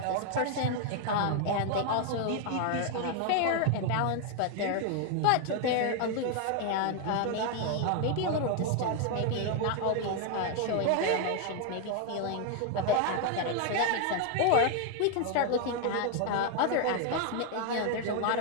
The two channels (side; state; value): both; different; correlation 0.00